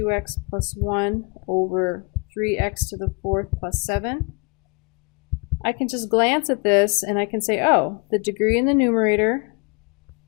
plus 1 over 3x to the 4th plus 7. I can just glance at this and I can say, oh, the degree in the numerator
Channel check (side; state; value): right; quieter; 31.3 dB